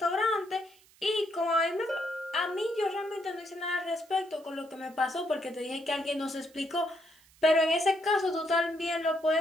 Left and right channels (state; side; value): noise; right; hiss, 28 dB below the sound